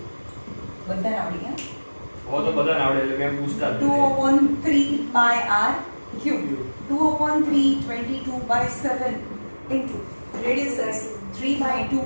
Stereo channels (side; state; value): both; inverted; correlation -1.00